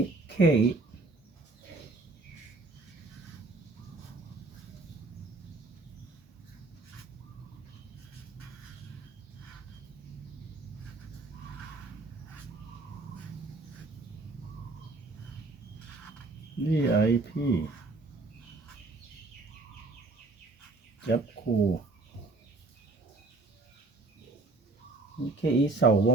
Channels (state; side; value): quieter; left; 3.4 dB